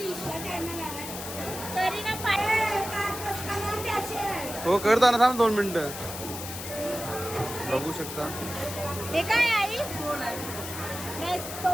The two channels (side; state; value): left; noise; hiss, 8 dB below the sound